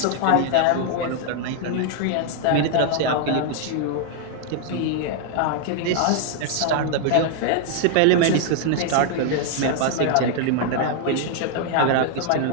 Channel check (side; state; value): both; different; correlation 0.00